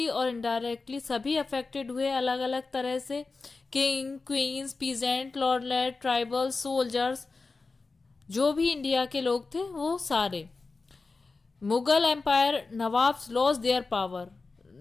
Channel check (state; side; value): quieter; right; 4.0 dB